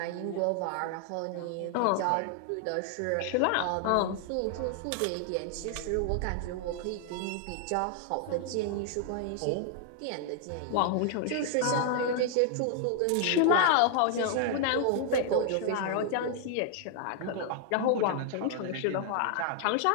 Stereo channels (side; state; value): both; different; correlation 0.00